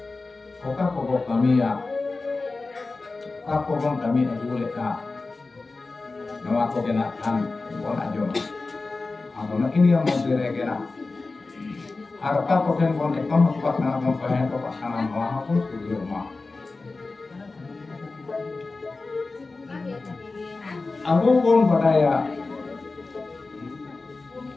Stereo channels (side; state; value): right; quieter; 3.6 dB